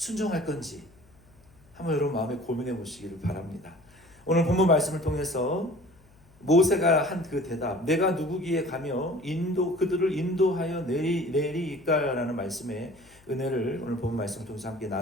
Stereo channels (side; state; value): left; noise; hum, 28 dB below the sound